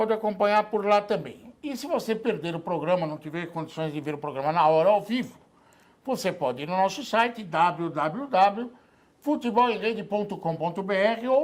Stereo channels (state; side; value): identical; both; correlation 1.00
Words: acompanhar por lá também. E se você perder o programa, não tiver condições de ver o programa na hora, ao vivo, você pode ir no nosso site, www.futebolemrede.com.br